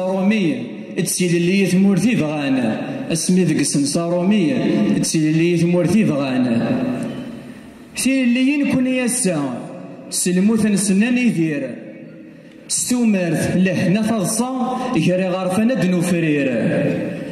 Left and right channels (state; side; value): identical; both; correlation 1.00